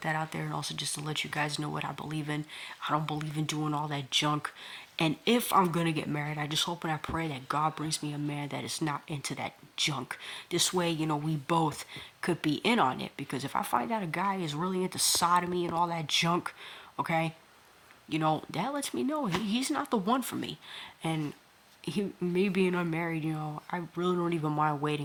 that out there and also just to let you guys know what I believe in. I don't believe in doing all that junk. And if I'm going to get married, I just hope and I pray that God brings me a man that is not into that junk. This way, we both could be in on it. Because if I find out a guy is really into sodomy and all that junk, okay, that lets me know he's not the one for me. And me being unmarried, I really don't even mind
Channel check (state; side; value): identical; both; correlation 1.00